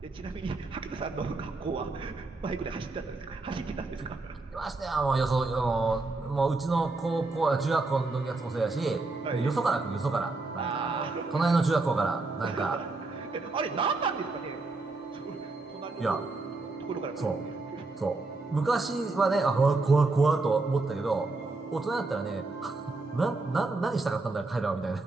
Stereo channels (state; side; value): quieter; left; 3.4 dB